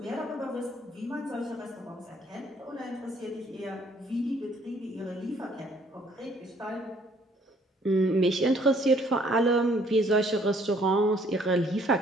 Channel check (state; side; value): normal; both; correlation 0.63